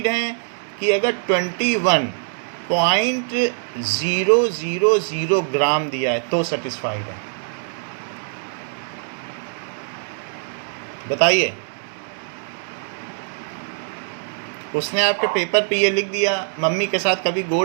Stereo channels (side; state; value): left; silent; 63 dB below the other